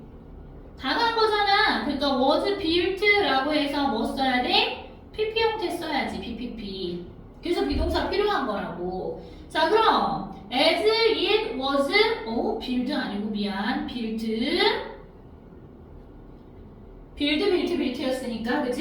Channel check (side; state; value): both; identical; correlation 1.00